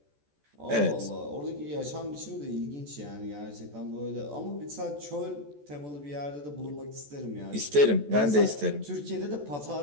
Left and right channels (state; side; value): late; left; 14 ms